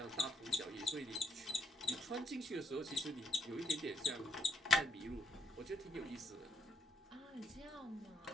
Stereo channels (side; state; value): both; normal; correlation 0.74